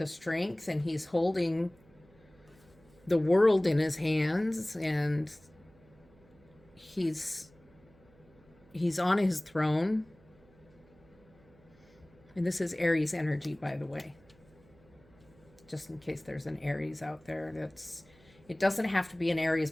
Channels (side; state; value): right; noise; hum, 28 dB below the sound